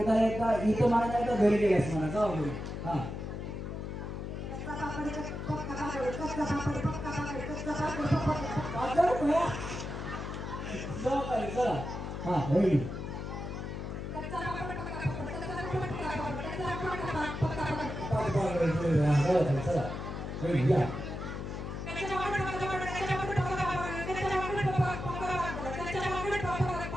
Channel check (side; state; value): left; noise; hum, 6 dB below the sound